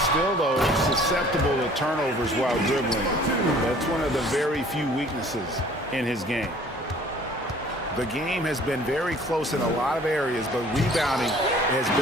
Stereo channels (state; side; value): normal; both; correlation 0.53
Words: Still, though, susceptible to turnovers while dribbling. That's one of the very few weaknesses in his game. The game has been very close in a lot of areas, but rebounding has